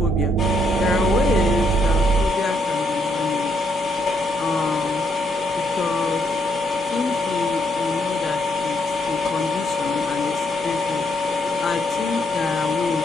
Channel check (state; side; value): normal; both; correlation 0.73